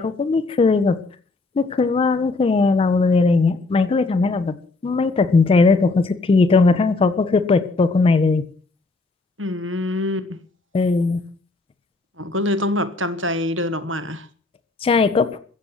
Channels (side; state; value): right; quieter; 3.4 dB